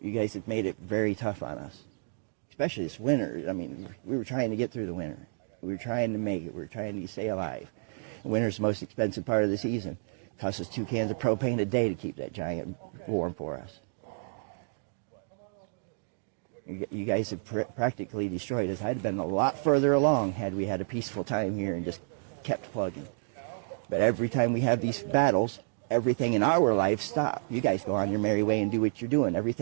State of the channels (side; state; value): left; silent; digital silence